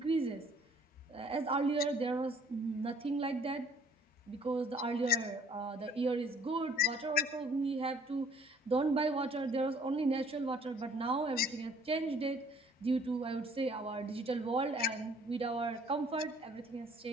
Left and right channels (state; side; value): normal; both; correlation 0.58